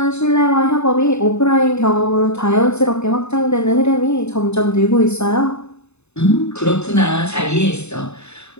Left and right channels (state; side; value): late; right; 0.81 ms